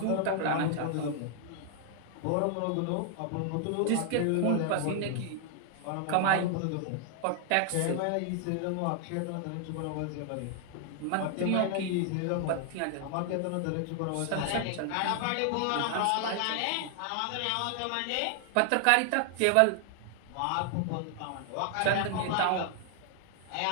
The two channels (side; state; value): both; different; correlation 0.00